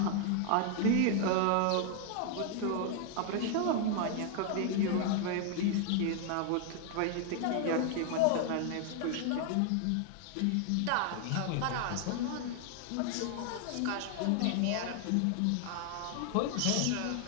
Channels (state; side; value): different; both; correlation 0.00